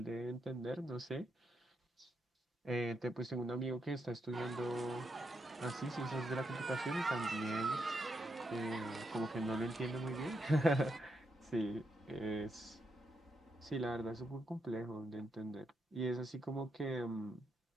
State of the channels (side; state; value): both; normal; correlation 0.82